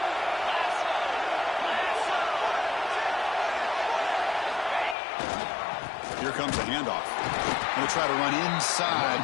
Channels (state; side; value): drops out; right; at 5.0 s